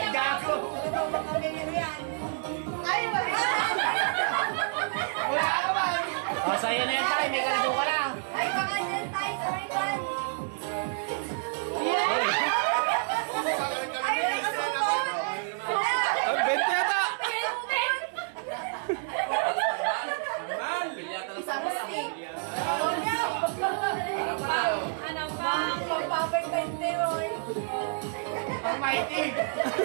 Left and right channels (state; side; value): silent; left; 59 dB below the other